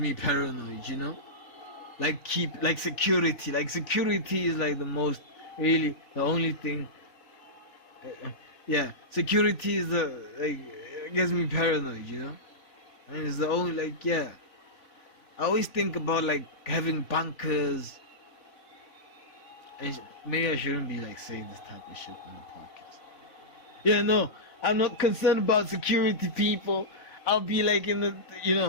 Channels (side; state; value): right; late; 3.5 ms